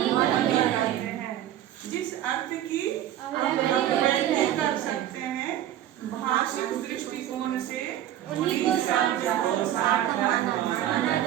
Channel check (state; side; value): quieter; left; 12.0 dB